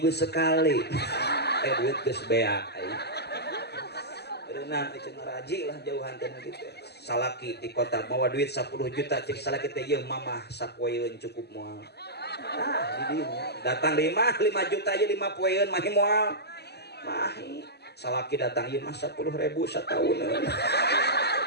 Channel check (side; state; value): right; late; 0.48 ms